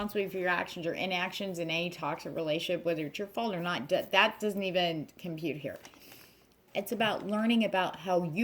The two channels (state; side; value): identical; both; correlation 1.00